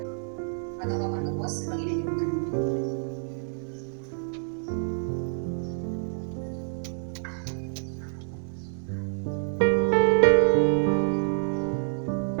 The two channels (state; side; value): silent; left; 60 dB below the other